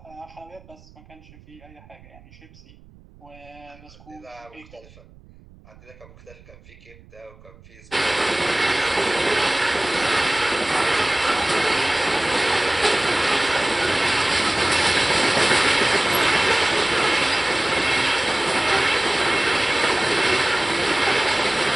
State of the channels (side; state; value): right; noise; rumble, 24 dB below the sound